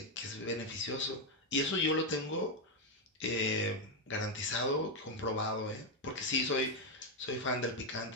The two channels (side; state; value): both; normal; correlation 0.04